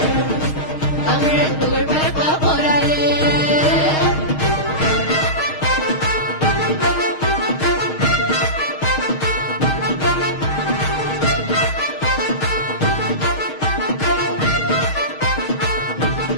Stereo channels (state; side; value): late; right; 6.4 ms